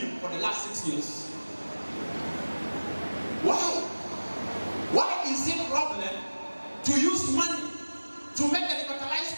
for the last 6 years? Why? Why is it a problem to use money to make the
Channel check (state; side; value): inverted; both; correlation -1.00